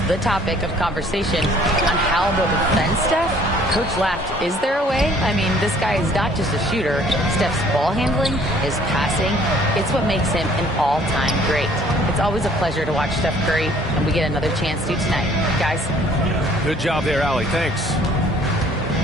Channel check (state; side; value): normal; both; correlation 0.57